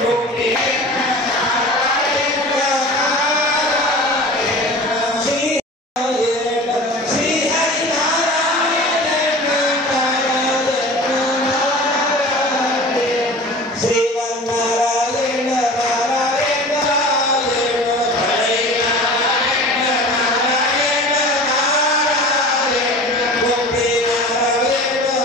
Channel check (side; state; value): both; normal; correlation 0.38